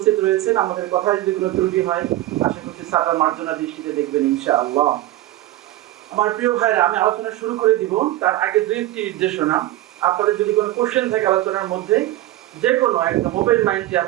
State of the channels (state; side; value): quieter; left; 15.6 dB